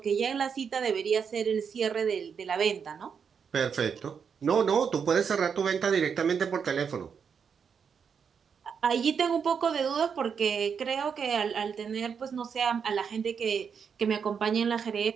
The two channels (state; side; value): quieter; left; 6.7 dB